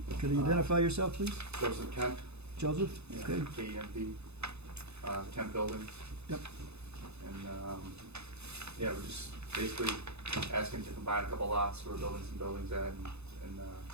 Could you identify yourself, please? Joseph Kent. Joseph? Yeah, Okay. KEMP, Kent Building. Yep. And, yeah, we're just basically asking to combine a couple lots, we're building some buildings at, and,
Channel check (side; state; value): left; late; 0.80 ms